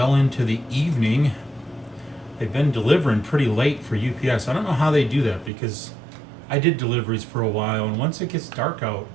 into the evening. They've been delivering pretty late for UPS. I don't know how they do that because I did deliveries for a while, and once it gets dark out,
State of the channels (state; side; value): drops out; left; at 5.5 s